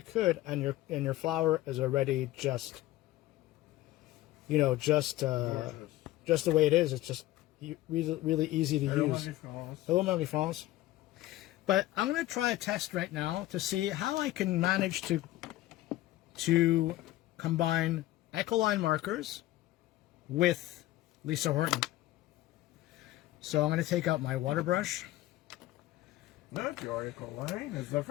and your flower is already just, you know, just the way it is. It's just really easy to use. Hello, Marie-France. But I'm going to try a test right now to see how I can manage to combine Ecoline markers with Lisa Horton. So I'm going to take out my water brush. Not your Ecoline. It's the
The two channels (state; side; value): quieter; right; 15.9 dB